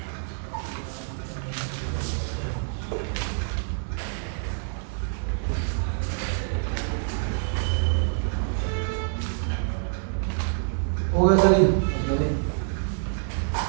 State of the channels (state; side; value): silent; left; digital silence